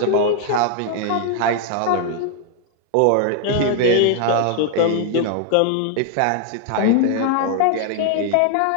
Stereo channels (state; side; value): different; both; correlation 0.00